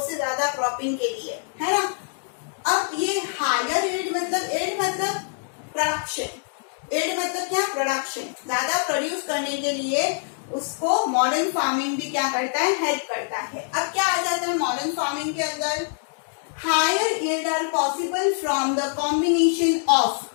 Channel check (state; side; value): silent; right; 62 dB below the other